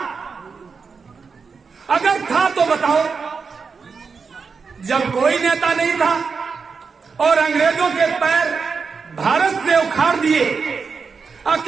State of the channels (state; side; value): quieter; left; 5.2 dB